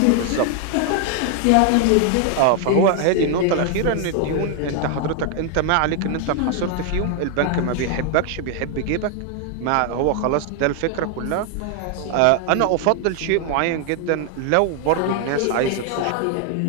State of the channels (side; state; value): both; different; correlation 0.00